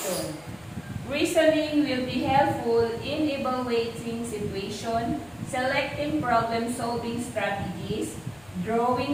Reasoning will be helpful in evaluating situation, selecting problem-solving strategies, drawing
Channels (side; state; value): left; noise; hum, 26 dB below the sound